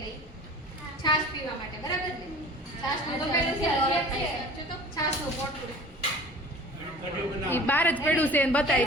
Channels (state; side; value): normal; both; correlation 0.43